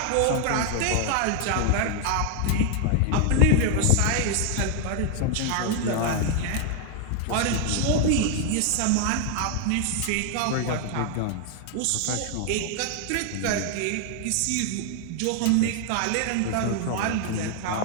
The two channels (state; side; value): different; both; correlation 0.00